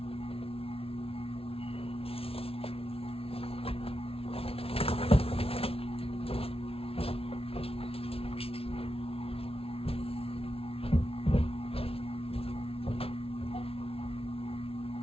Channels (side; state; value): right; late; 0.27 ms